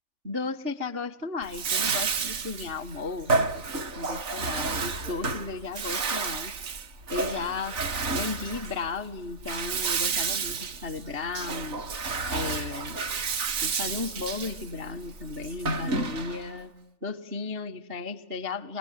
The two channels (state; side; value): late; left; 3.4 ms